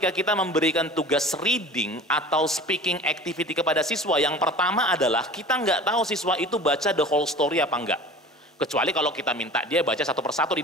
kita memberikan tugas reading atau speaking activity kepada siswa, yang pertama adalah kita nggak tahu siswa itu baca the whole story apa enggak. Kecuali kalau kita minta dia baca satu persatu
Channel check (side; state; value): both; normal; correlation 0.40